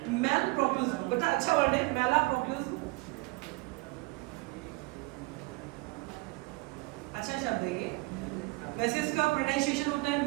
मैल प्रोपोजल, बेटा अच्छा वर्ड है मैला प्रोपोजल, अच्छा शब्द है ये। वैसे इसका प्रोनाउंसिएशन होता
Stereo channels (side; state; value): left; quieter; 25.0 dB